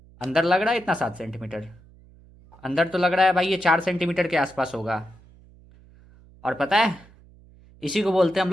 अंदर लग रहा है इतना 7 सेंटीमीटर? अंदर तो लग रहा है भाई ये 4 सेंटीमीटर के आसपास होगा। और पता है, इसी को बोलते हैं हम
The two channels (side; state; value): right; noise; hum, 25 dB below the sound